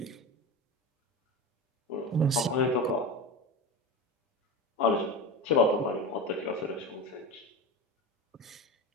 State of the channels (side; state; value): both; normal; correlation 0.24